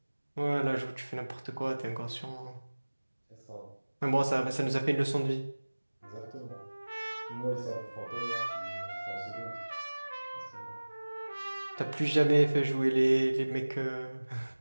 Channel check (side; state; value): both; inverted; correlation -1.00